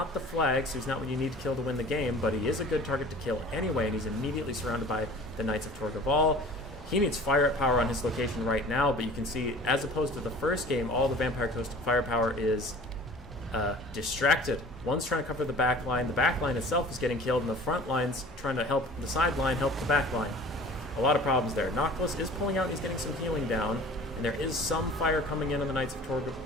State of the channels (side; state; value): both; normal; correlation 0.44